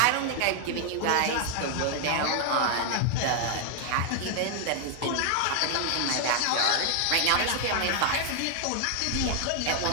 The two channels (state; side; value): different; both; correlation 0.00